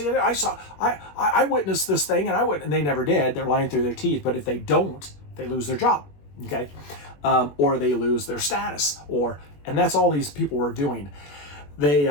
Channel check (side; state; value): right; late; 21 ms